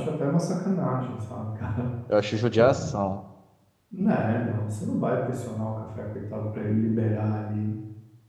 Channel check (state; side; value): identical; both; correlation 1.00